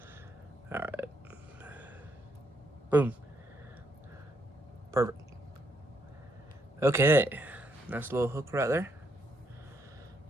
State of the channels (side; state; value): both; normal; correlation 0.74